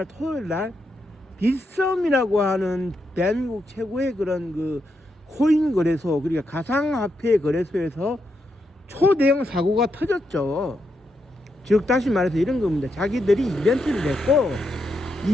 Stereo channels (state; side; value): normal; both; correlation 0.82